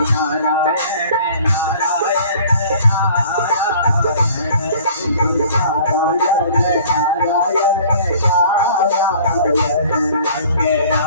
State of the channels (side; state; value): both; inverted; correlation -0.50